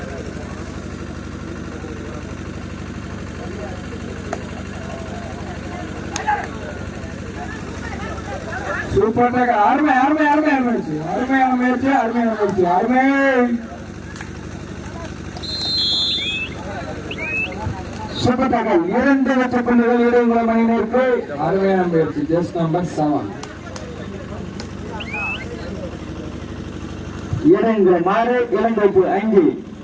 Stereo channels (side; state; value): both; identical; correlation 1.00